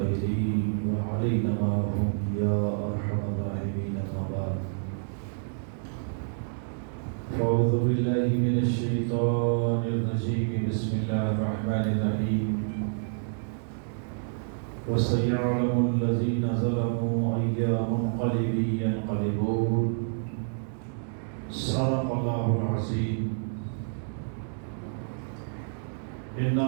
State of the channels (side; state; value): left; silent; digital silence